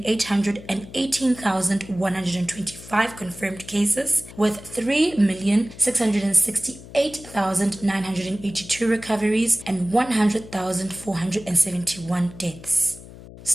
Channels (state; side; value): noise; left; hum, 17 dB below the sound